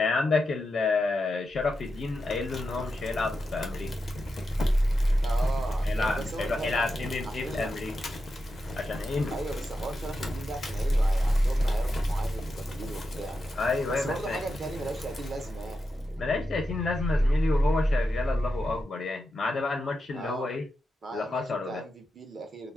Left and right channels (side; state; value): both; normal; correlation 0.88